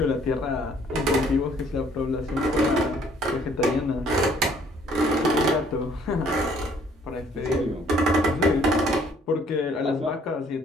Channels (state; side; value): normal; both; correlation 0.61